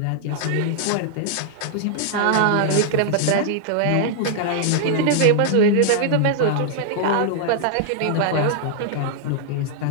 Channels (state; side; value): different; both; correlation -0.01